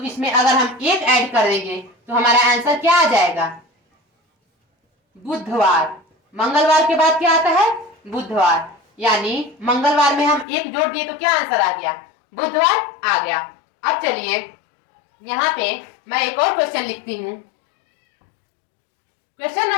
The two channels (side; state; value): right; drops out; at 10.5 s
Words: इसमें अगर हम एक ऐड कर देंगे तो हमारा आंसर क्या आ जाएगा, बुधवार। मंगलवार के बाद क्या आता है, बुधवार, यानी मंगलवार में हम एक जोड़ दिए तो क्या आंसर आ गया, बुधवार आ गया। अब चलिए यहाँ पे मैं एक और क्वेश्चन लिखती हूँ। क्वेश्चन